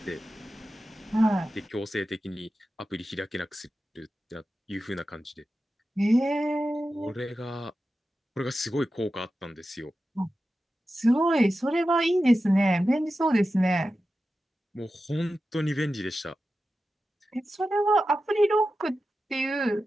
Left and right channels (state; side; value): normal; both; correlation 0.92